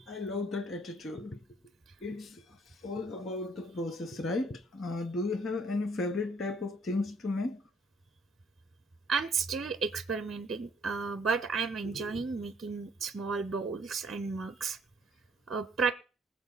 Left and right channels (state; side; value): normal; both; correlation 0.63